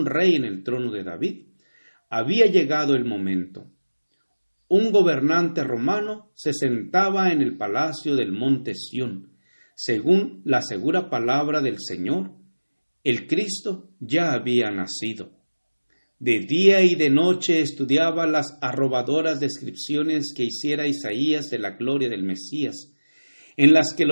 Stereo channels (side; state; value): both; inverted; correlation -1.00